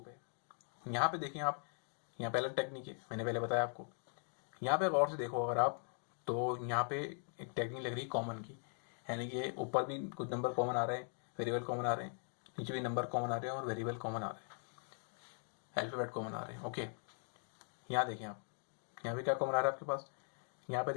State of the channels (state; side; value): silent; right; 51 dB below the other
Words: यहाँ पे देखें आप, यहाँ पे अलग टेक्निक है, मैंने पहले बताया आपको। यहाँ पे गौर से देखो अगर आप, तो यहाँ पे एक टेक्निक लग रही है कॉमन की, यानी कि ऊपर भी कुछ नंबर कॉमन आ रहे हैं, वेरिएबल कॉमन आ रहे हैं, नीचे भी नंबर कॉमन आ रहे हैं और वेरिएबल कॉमन आ रहे हैं, अल्फाबेट कॉमन आ रहे हैं। ओके, यहाँ देखें आप, यहाँ पे क्या कॉमन आ रहा है आपके पास, यहाँ पे